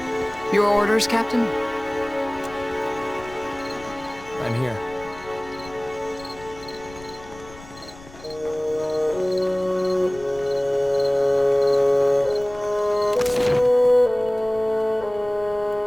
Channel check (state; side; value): noise; left; rumble, 19 dB below the sound